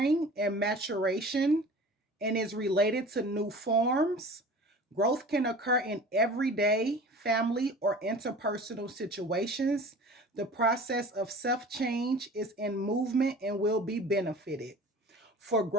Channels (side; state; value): both; normal; correlation 0.41